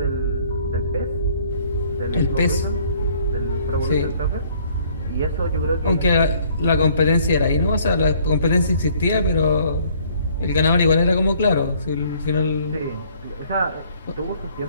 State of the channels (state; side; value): inverted; both; correlation -0.60